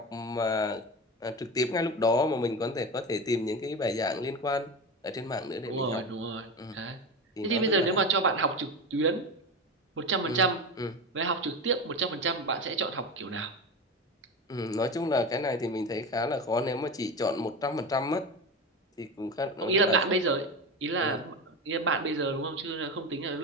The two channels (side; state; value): both; normal; correlation 0.23